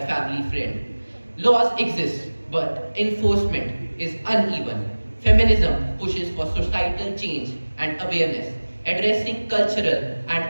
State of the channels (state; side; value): inverted; both; correlation -1.00